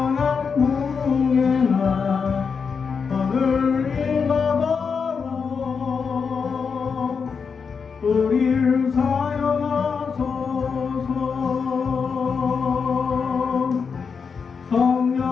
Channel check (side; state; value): right; quieter; 5.8 dB